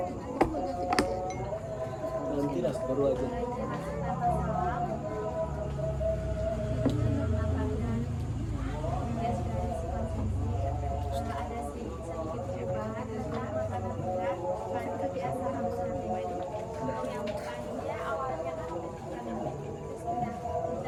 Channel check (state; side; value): identical; both; correlation 1.00